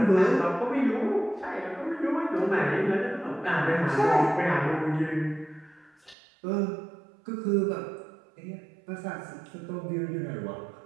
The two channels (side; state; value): left; drops out; at 6.2 s